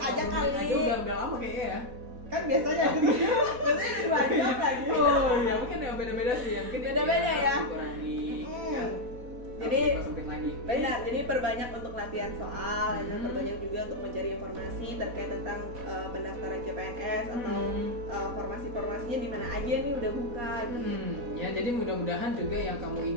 aja kali. Udah lama kayaknya ya. Kan biasanya biasanya 2 jam lagi. Oh iya, mungkin ya beda-beda sih ya. Mungkin beda-beda ya. Dikurangi kan. Jadi lagi. Benar, jadi perbanyak untuk latihan soal dan perbanyak juga untuk mencari informasi terkait tentang pendaftaran CPNS atau formasi-formasinya di mana aja nih udah buka gitu. Ya, jadi mudah-mudahan juga yang kamu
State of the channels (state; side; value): late; left; 4.1 ms